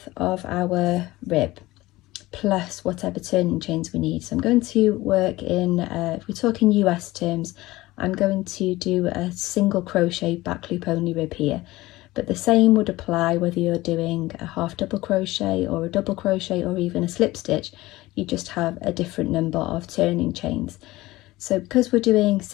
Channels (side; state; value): right; quieter; 18.6 dB